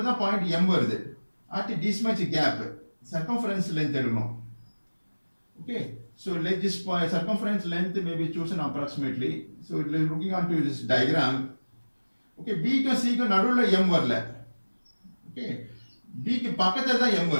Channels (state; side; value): inverted; both; correlation -1.00